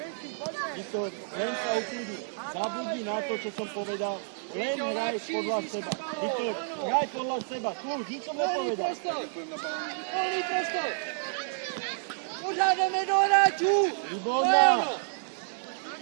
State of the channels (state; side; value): silent; left; digital silence